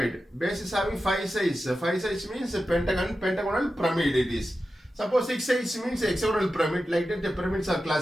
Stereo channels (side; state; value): both; normal; correlation 0.92